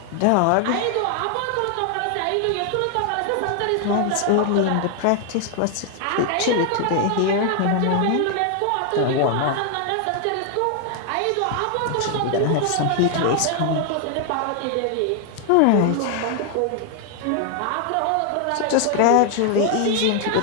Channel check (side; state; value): both; different; correlation 0.00